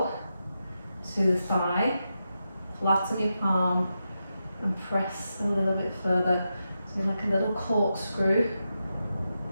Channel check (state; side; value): inverted; both; correlation -0.88